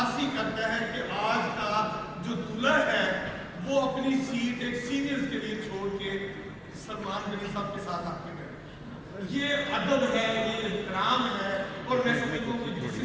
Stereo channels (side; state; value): both; identical; correlation 1.00